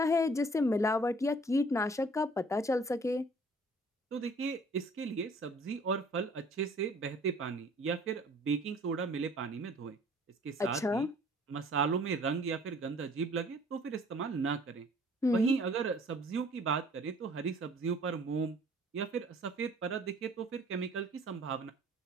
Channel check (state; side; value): normal; both; correlation 0.54